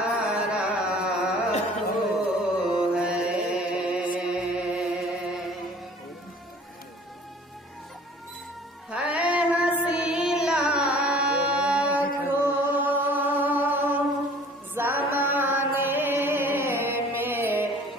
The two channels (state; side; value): normal; both; correlation 0.49